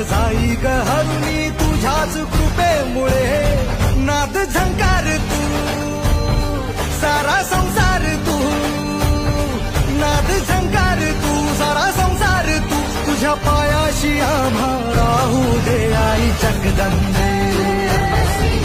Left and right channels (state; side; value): identical; both; correlation 1.00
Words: जाई ग हरुणी तुझ्याच कृपेमुळे. नाद झंकार तू सारा संसार तू, नाद झंकार तू सारा संसार तू, तुझ्या पायाशी आम्हा राहू दे. आई जगदंबे,